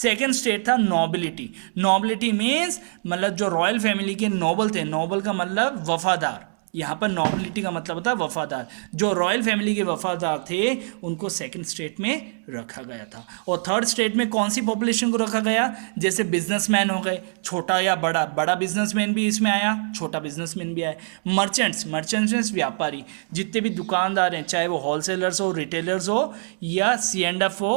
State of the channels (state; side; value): silent; left; 63 dB below the other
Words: स्टेट था नोबिलिटी। नोबिलिटी मीन्स मतलब जो रॉयल फैमिली के नोबल थे, नोबल का मतलब वफादार, यहाँ पर नोबिलिटी का मतलब होता है वफादार, जो रॉयल फैमिली के वफादार थे उनको सेकंड स्टेट में रखा गया था। और थर्ड स्टेट में कौन सी पॉपुलेशन को रखा गया, जैसे बिजनेसमैन हो गए, छोटा या बड़ा, बड़ा बिजनेसमैन भी इसमें आया, छोटा बिजनेसमैन भी आया। मर्चेंट्स, मर्चेंट्स मीन्स व्यापारी, जितने भी दुकानदार हैं, चाहे वो होलसेलर्स हो, रिटेलर्स हो या C&F हो